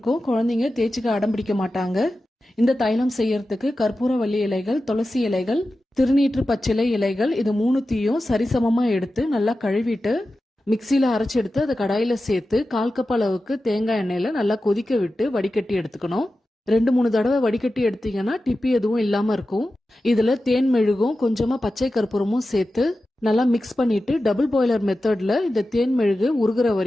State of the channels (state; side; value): normal; both; correlation 0.93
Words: குழந்தைங்க தேய்ச்சிக்க அடம் பிடிக்க மாட்டாங்க. இந்த தைலம் செய்யறதுக்கு கற்பூரவள்ளி இலைகள், துளசி இலைகள், திருநீற்று பச்சிலை இலைகள், இது மூணுத்தையும் சரிசமமா எடுத்து நல்லா கழுவிட்டு மிக்சியில அரைச்சு எடுத்து அதை கடாயில சேர்த்து 1/4 கப் அளவுக்கு தேங்காய் எண்ணெயில நல்லா கொதிக்க விட்டு வடிகட்டி எடுத்துக்கணும். 2-3 தடவை வடிகட்டி எடுத்தீங்கன்னா டிப்பி எதுவும் இல்லாம இருக்கும். இதுல தேன் மெழுகும் கொஞ்சமா பச்சை கற்பூரமும் சேர்த்து நல்லா மிக்ஸ் பண்ணிட்டு டபுள் பாய்லர் மெத்தட்ல இந்த தேன் மெழுகு உருகுற